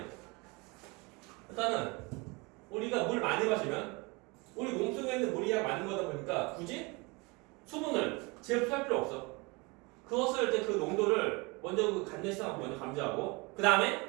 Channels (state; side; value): quieter; left; 27.0 dB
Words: 일단은 우리가 물 많이 마시면 우리 몸속에 있는 물이 많은 거다 보니까 굳이 수분을 제흡수할 필요 없어. 그것을 이제 그 농도를 먼저 그 간내시장하고 먼저 감지하고, 그